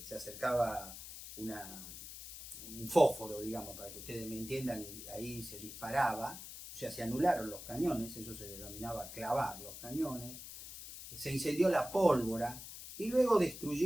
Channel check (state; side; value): noise; left; hiss, 11 dB below the sound